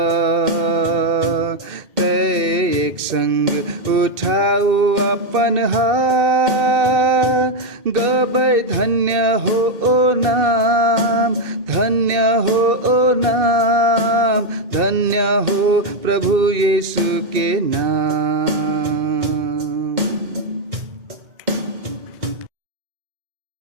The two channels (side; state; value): left; late; 2.6 ms